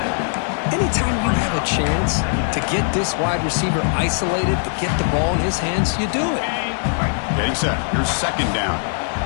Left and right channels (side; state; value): right; silent; digital silence